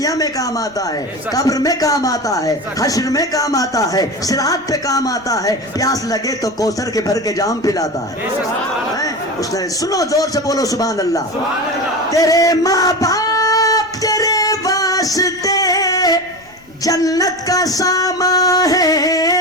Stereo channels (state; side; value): noise; left; rumble, 29 dB below the sound